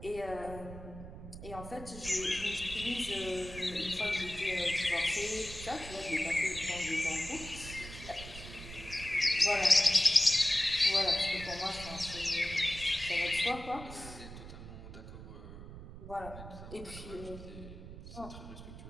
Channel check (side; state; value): right; noise; rumble, 13 dB below the sound